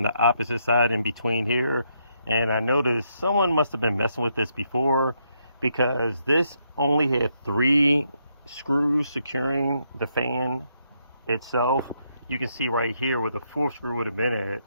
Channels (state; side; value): inverted; both; correlation -0.77